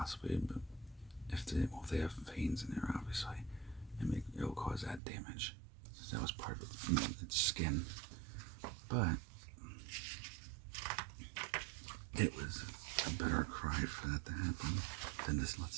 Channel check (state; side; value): drops out; left; at 5.0 s